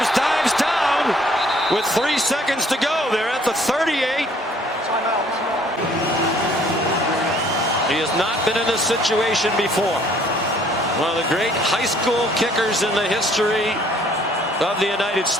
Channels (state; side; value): normal; both; correlation 0.60